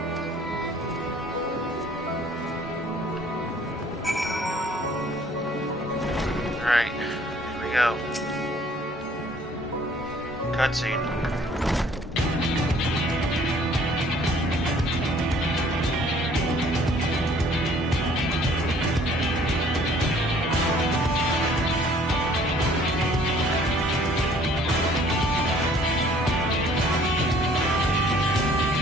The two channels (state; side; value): normal; both; correlation 0.57